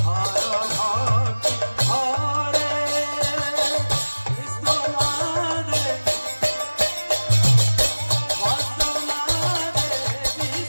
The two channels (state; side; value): inverted; both; correlation -1.00